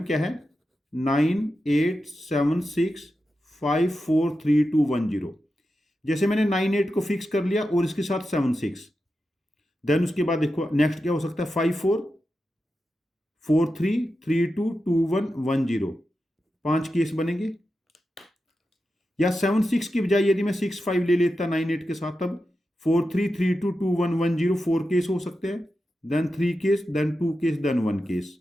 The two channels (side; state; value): both; normal; correlation 0.90